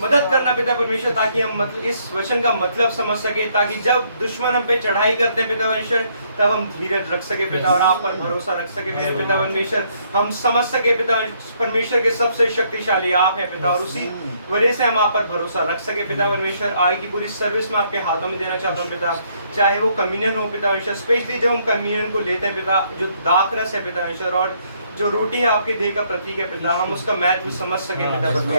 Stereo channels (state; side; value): inverted; both; correlation -0.69